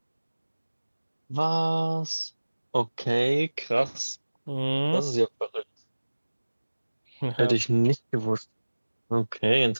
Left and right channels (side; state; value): both; inverted; correlation -1.00